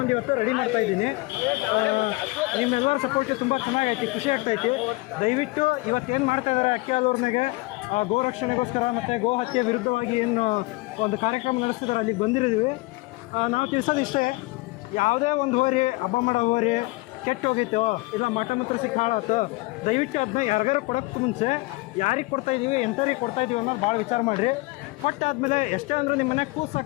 ಇವತ್ತು ರೆಡಿ ಮಾಡ್ತಾಯಿದ್ದೀನಿ. ನಿಮ್ಮೆಲ್ಲರ ಸಪೋರ್ಟ್ ತುಂಬ ಚೆನ್ನಾಗೈತಿ, ಖುಷಿ ಆಗ್ತೈತಿ. ದಯವಿಟ್ಟು ಇವತ್ತೇನು ಮಾಡ್ತಾಯಿದ್ದಾರೆ ಅಕ್ಕಿ ಹಾಲೂರಿನಾಗೆ ಗೋ ರಕ್ಷಣೆಗೋಸ್ಕರ ಮತ್ತು ಗೋ ಹತ್ಯೆ ವಿರುದ್ಧವಾಗಿ ಏನು ಒಂದು ಕಾರ್ಯಕ್ರಮ ನಡೆಸ್ತಿದ್ದಾರೆ, ಅಲ್ಲಿಗೆ ಬಂದಿರಿದ್ದೀವಿ. ನಾವು ತಿಳಿಸೋದಿಷ್ಟೇ, ಯಾವುದೇ ಒಂದು ಹೋರಿ ಹಬ್ಬ ಮಾಡೋ ಹೋರಿ ಕೆಟ್ಟು ಹೋಗಿತ್ತು, ಇಲ್ಲ ಮಠ ಮಾತ್ರ ಸಿಕ್ಕ ಹಾಳಾಯ್ತು, ದಯವಿಟ್ಟು ಅದನ್ನ ಯಾರಿಗಾರು ಕೊಡೋಕ್ಕೆ ಮುಂಚೆ ಯಾರಿಗೆ ಕೊಡ್ತಾಯಿದ್ದೀವಿ, ಎಂಥವ್ರಿಗೆ ಕೊಡ್ತಾಯಿದ್ದೀವಿ ಅನ್ನೋದು ಭಾಳ ವಿಚಾರ ಮಾಡಿರಿ. ಕೊಟ್ಟಾದಮೇಲೆ ಎಷ್ಟೇ ಅಂದರೂ ನಿಮ್ಮ ಮನೆಗೆ ಕೂಸು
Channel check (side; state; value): right; quieter; 23.2 dB